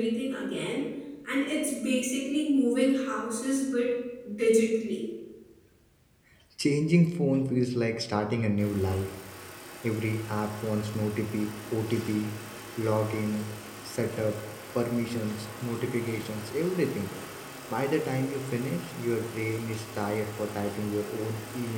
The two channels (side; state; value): both; identical; correlation 1.00